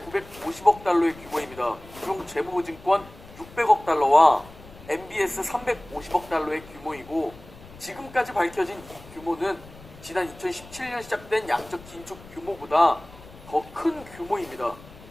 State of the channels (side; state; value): left; noise; rumble, 20 dB below the sound